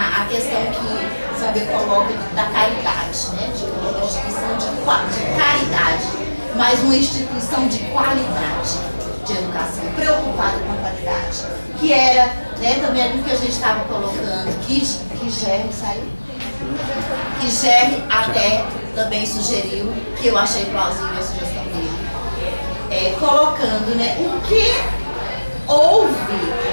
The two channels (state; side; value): inverted; both; correlation -1.00